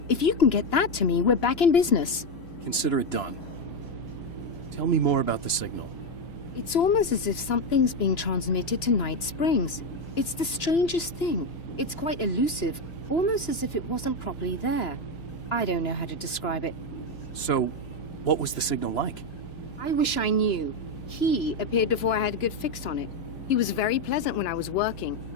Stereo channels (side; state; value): right; late; 2.9 ms